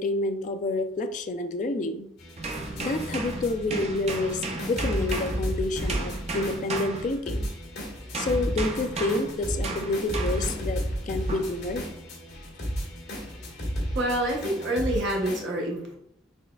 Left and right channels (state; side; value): normal; both; correlation 0.54